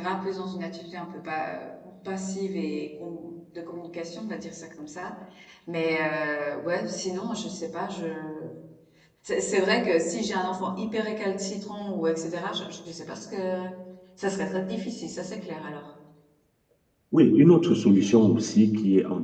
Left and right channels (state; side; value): identical; both; correlation 1.00